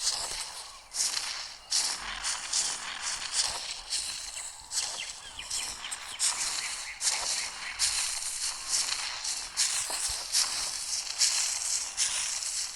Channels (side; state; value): both; identical; correlation 1.00